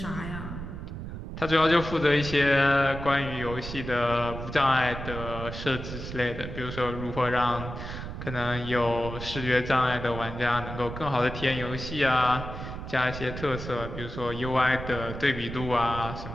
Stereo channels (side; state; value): right; noise; rumble, 8 dB below the sound